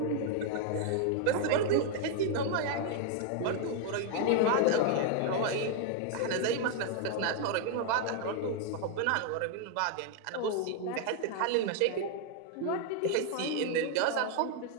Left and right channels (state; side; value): different; both; correlation 0.00